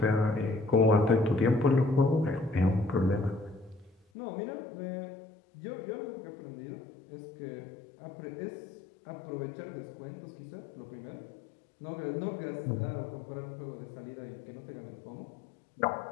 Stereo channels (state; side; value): drops out; right; at 4.0 s